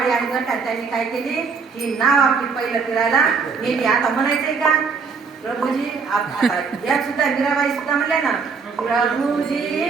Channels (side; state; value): left; quieter; 5.2 dB